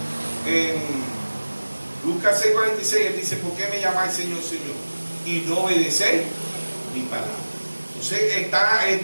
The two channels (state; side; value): inverted; both; correlation -1.00